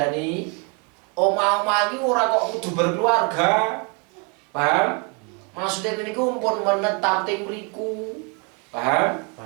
Omah-omah iki ora kok kudu berkeluarga. Paham? Maksudnya niku pun menetap teng mriku. Paham?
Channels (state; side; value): quieter; left; 33.5 dB